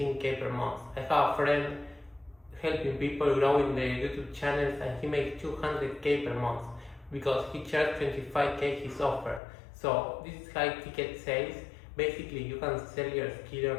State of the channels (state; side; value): drops out; right; at 9.4 s